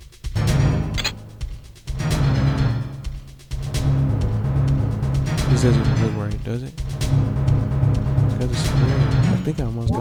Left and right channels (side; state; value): both; identical; correlation 1.00